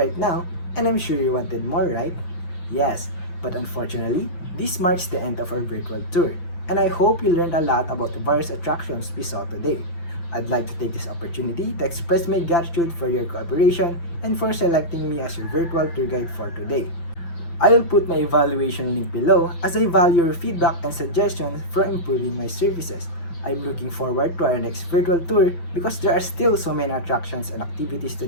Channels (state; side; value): late; right; 5.9 ms